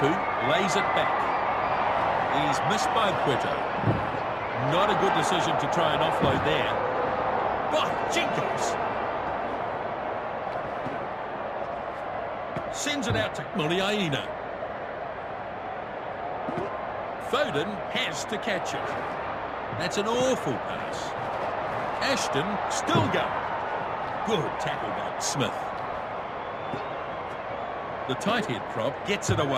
lays it back. He's missed by Puerto. Not a good decision to try and offload there. By Jenkins! Sends it out to Muliaina. Foden has to catch it. That's an awful pass. Ashton still going. Good tackle by Smith. The tight head prop gets it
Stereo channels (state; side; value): identical; both; correlation 1.00